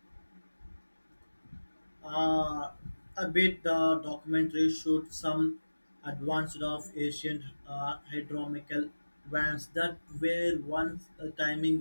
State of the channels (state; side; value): inverted; both; correlation -1.00